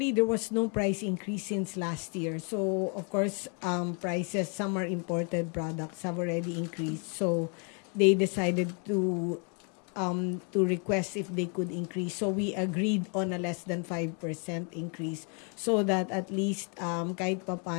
there was no price increase since last year. So, of course, prices, some are imported products, have already increased. So, they decided to request if they could increase. So, we agreed on a less than 5% increase so that at least kahit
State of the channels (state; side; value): quieter; right; 37.9 dB